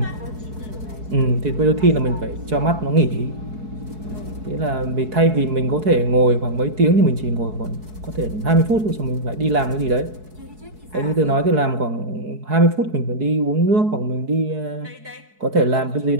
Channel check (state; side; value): late; left; 4.7 ms